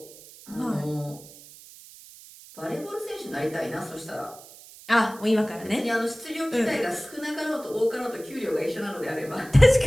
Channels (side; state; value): right; noise; hiss, 19 dB below the sound